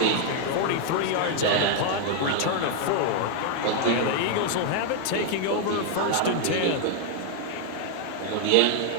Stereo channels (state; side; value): different; both; correlation 0.00